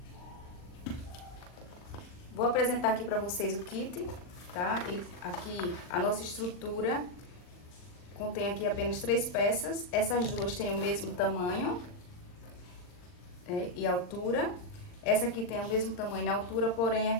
Vou apresentar aqui para vocês o kit, tá? Aqui a nossa estrutura contém aqui apenas 3 peças. Essas duas têm o mesmo tamanho e altura. Essa aqui tem o mesmo tamanho e altura, porém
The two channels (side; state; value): right; late; 39 ms